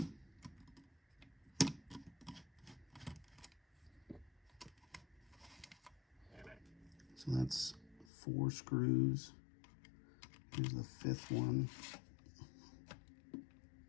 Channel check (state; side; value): drops out; right; at 8.1 s